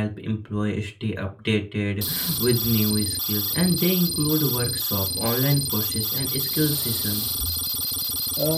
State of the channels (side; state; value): both; identical; correlation 1.00